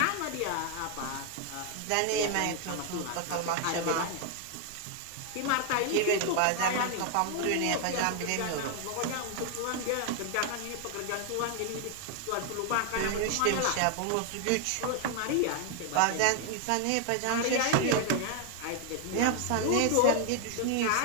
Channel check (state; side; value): different; both; correlation 0.00